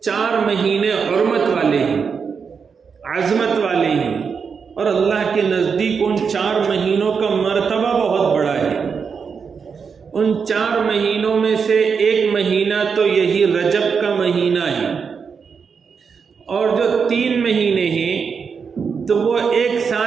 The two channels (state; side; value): quieter; left; 6.0 dB